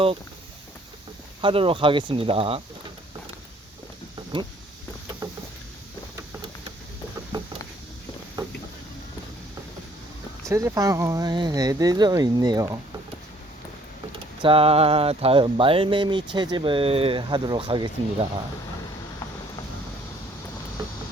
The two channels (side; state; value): both; normal; correlation 0.60